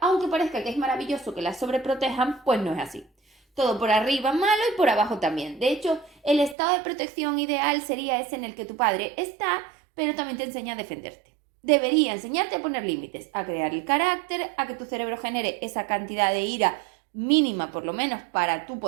aunque parezca que es maravilloso que las sobreprotejan, pues no es así. Todo por arriba malo y por abajo también. De hecho, el estado de protección ideal sería ese en el que tu padre está, pero también te enseña a defenderte. Debería enseñarte a poner límites, a crear el carácter, a que tu cerebro genere esa cantidad de ira mínima por lo menos para tú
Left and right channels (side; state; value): left; drops out; at 6.6 s